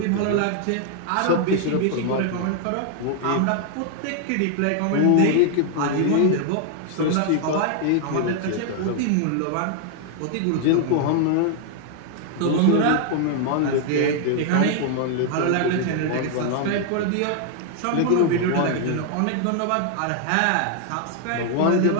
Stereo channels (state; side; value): different; both; correlation 0.00